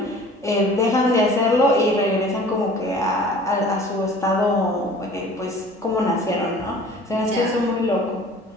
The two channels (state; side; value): normal; both; correlation 0.47